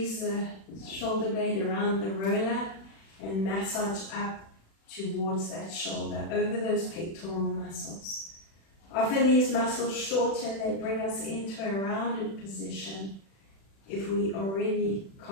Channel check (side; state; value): right; late; 36 ms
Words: the shoulder blade around the roller and massage up towards that shoulder, over those pectoral muscles. Often these muscles shorten, they bring us into a rounded position. If we already